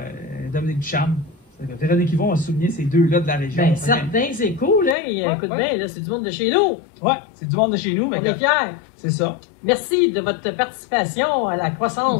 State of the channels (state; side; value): drops out; right; at 5.0 s